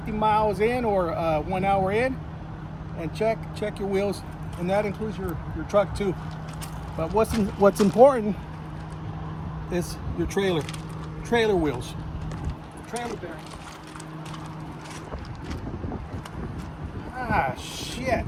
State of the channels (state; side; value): identical; both; correlation 1.00